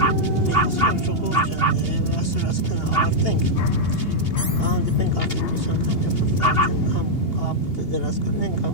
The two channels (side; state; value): right; late; 2.8 ms